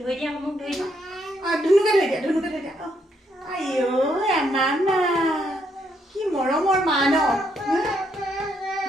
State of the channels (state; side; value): normal; both; correlation 0.75